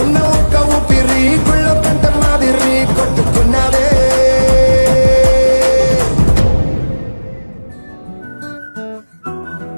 ఉన్న ఒక్క ఊపిరి గుళ్ళో గంట మాదిరి కొట్టుకున్నదే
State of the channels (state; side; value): inverted; both; correlation -1.00